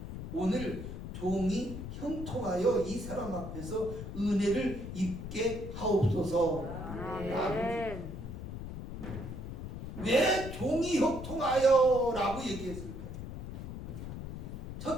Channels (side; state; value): left; noise; rumble, 8 dB below the sound